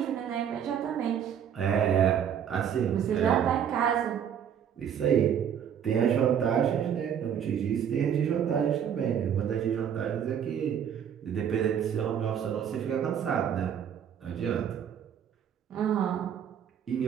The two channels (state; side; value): quieter; left; 8.7 dB